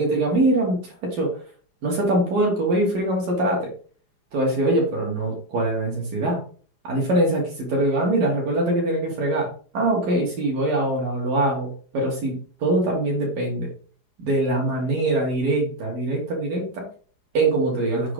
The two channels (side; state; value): left; late; 4.9 ms